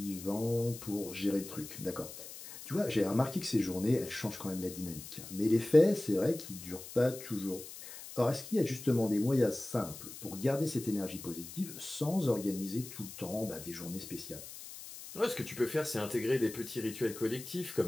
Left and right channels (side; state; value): left; noise; hiss, 13 dB below the sound